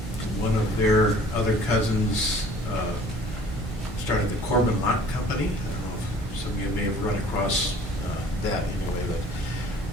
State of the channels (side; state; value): both; normal; correlation 0.52